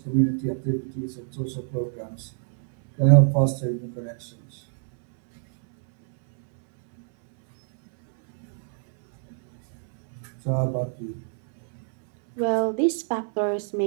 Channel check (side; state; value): left; silent; 62 dB below the other